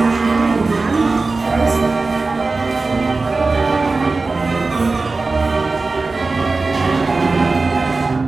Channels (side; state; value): left; quieter; 3.7 dB